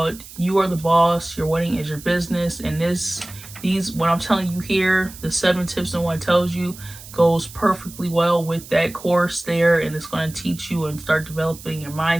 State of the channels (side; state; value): right; noise; hiss, 17 dB below the sound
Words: You Are the Boss, Your Wedding is Your Business. And these what I'm telling you here, the 7 tips no one tells you, goes perfectly well with that course there, and it's going to teach you and start developing your